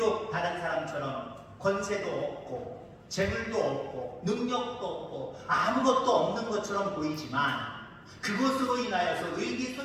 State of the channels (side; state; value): both; identical; correlation 1.00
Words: 다른 사람처럼 권세도 없고 재물도 없고 능력도 없고 아무것도 없는 것처럼 보이지만 그것으로 인하여서